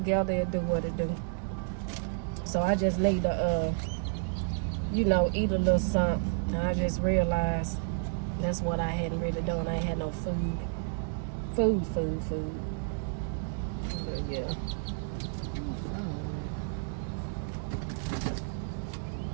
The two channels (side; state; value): left; silent; digital silence